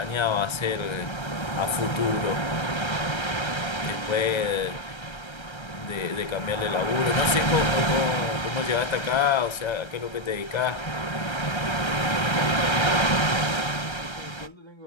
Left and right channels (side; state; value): right; late; 1.3 ms